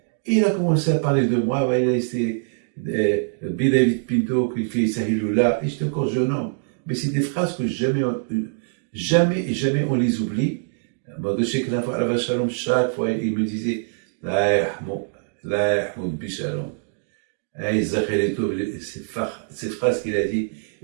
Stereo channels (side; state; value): left; silent; digital silence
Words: il a commencé à parler de moi, il a laissé David Pinto qui fait Sahilullah, et j'étais encore jeune homme. Mais c'est des phrases que jamais on les oublie. Je sais que chaque fois, il me disait La yahmoud bishalom. Ces phrases qu'il a dit,